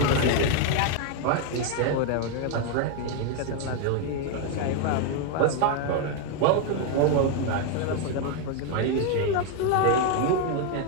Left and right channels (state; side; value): different; both; correlation 0.01